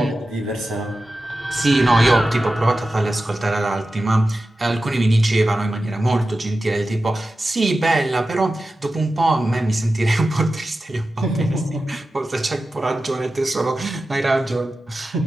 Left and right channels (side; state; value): both; normal; correlation 0.93